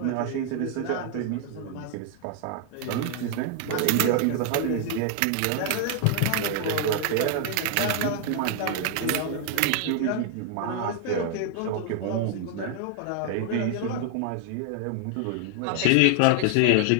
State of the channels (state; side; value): different; both; correlation 0.00